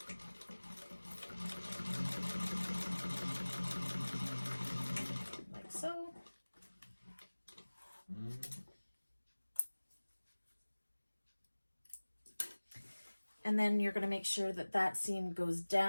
Like so. And then you're going to make sure that that seam goes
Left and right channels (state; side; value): inverted; both; correlation -1.00